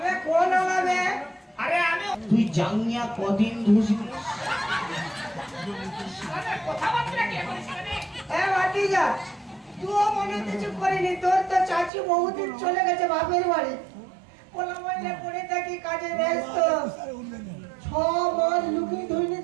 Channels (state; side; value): drops out; left; at 11.9 s